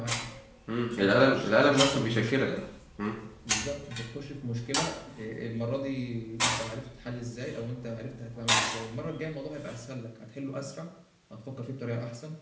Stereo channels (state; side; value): identical; both; correlation 1.00